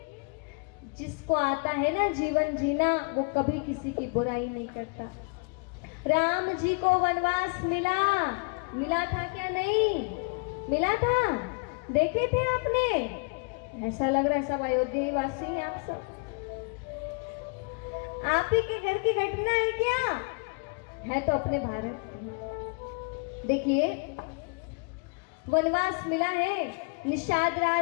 जिसको आता है ना जीवन जीना, वो कभी किसी की बुराई नहीं करता। राम जी को वनवास मिला था क्या? नहीं मिला था। देखे थे आपने? ऐसा लग रहा है सब अयोध्या वासी हैं आप सब। आप ही के घर की घटना है क्या? है तो अपने भारत। देखिए वनवास मिला है। निषाद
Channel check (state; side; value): quieter; right; 33.2 dB